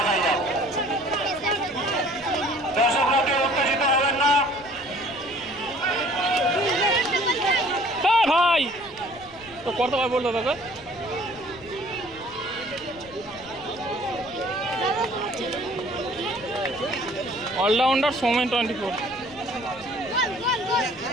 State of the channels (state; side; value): noise; left; rumble, 22 dB below the sound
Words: যাক। দর্শকরা কেউ উত্তেজিত হবেন না। ভাই তো করতে পারবো বলতে তোকে। অলরাউন্ডার সৌমেন 24।